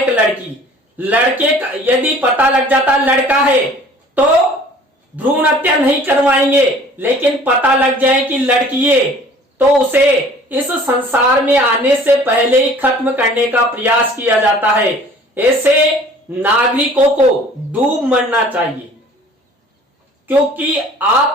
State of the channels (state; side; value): normal; both; correlation 0.50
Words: लड़की। लड़के का यदि पता लग जाता लड़का है तो भ्रूण हत्या नहीं करवाएंगे, लेकिन पता लग जाए कि लड़की है तो उसे इस संसार में आने से पहले ही खत्म करने का प्रयास किया जाता है। ऐसे नागरिकों को डूब मरना चाहिए, क्योंकि